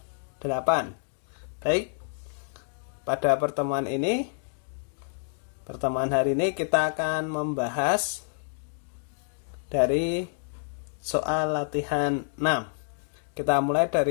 8. Baik, pada pertemuan hari ini kita akan membahas dari soal latihan 6. Kita mulai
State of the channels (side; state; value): right; silent; digital silence